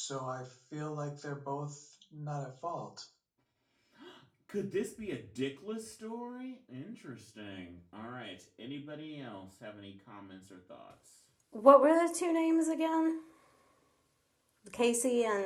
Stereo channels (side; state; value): both; identical; correlation 1.00